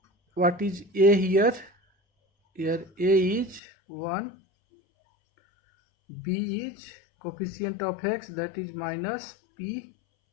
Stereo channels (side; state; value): right; drops out; at 3.6 s